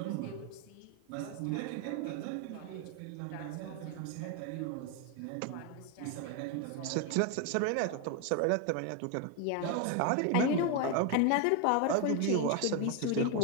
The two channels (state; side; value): different; both; correlation 0.01